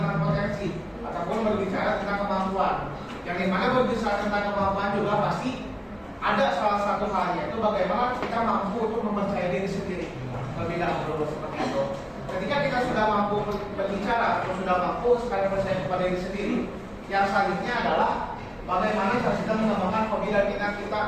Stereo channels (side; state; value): both; identical; correlation 1.00